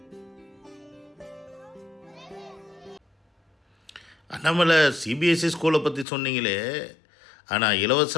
நம்மளை சிபிஎஸ்சி ஸ்கூலை பற்றி சொன்னீங்களே, ஆனால்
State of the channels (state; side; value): drops out; right; at 6.1 s